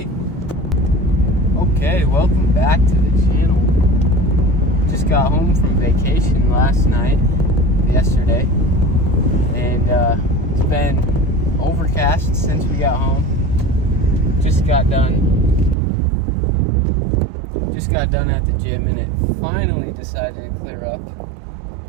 Okay, welcome back to the channel. Just got home from vacation yesterday, and it's been overcast since we got home. Just got done at the gym, and it finally decided to clear up,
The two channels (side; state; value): left; drops out; at 15.8 s